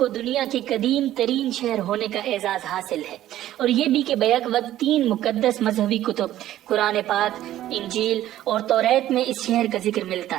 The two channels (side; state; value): left; quieter; 13.3 dB